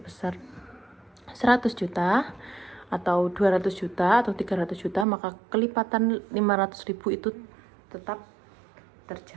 100 juta atau 200 juta atau 300 juta, maka kelipatan 500 ribu itu tetap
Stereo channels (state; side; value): drops out; left; at 5.1 s